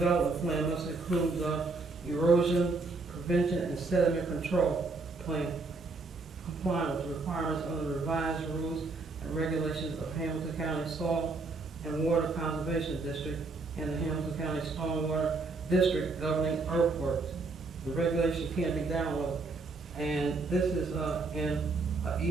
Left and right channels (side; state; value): left; quieter; 3.7 dB